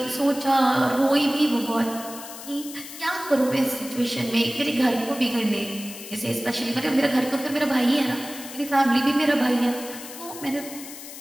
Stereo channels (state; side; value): noise; left; hiss, 13 dB below the sound